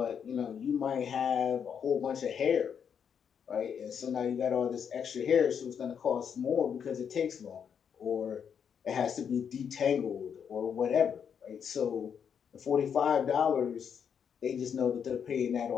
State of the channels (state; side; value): quieter; right; 7.5 dB